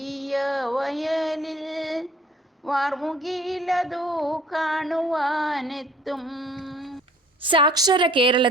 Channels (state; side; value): normal; both; correlation 0.54